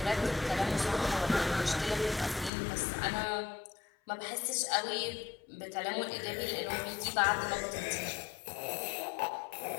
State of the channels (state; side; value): drops out; right; at 2.5 s